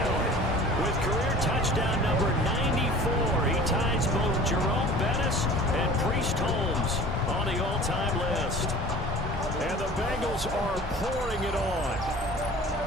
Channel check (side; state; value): both; normal; correlation 0.44